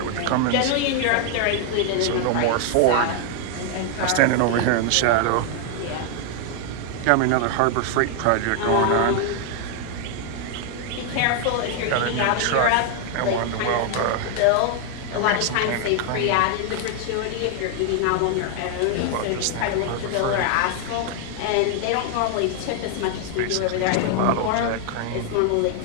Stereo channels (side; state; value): both; different; correlation 0.00